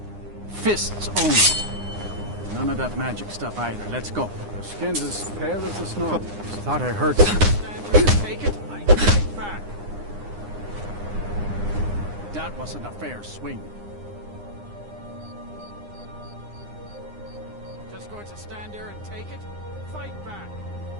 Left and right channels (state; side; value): late; left; 9.8 ms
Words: Fists only. None of that magic stuff either. Let's go. Their skin's as pale as the snow. Thought I heard something. Take it. I fight back. That wasn't a fair swing. Just going to stand there and take it? Fight back.